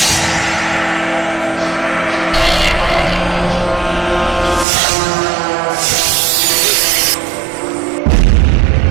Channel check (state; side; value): drops out; left; at 4.7 s